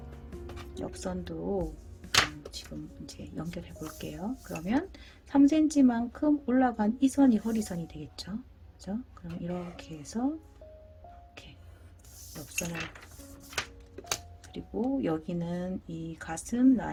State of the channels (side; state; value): both; identical; correlation 1.00